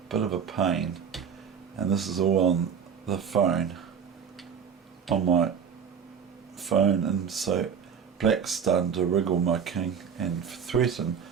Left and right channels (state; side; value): quieter; left; 7.2 dB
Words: bit of a pain. And this is all on the phone, on my phone, and so black's starting to wriggle my king and threaten